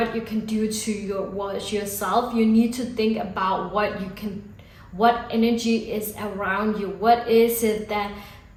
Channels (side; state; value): both; identical; correlation 1.00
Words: you can do to yourself, you need to think about what energy is around you. What is it that